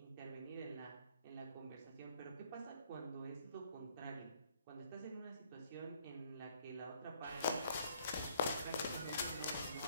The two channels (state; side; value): inverted; both; correlation -0.63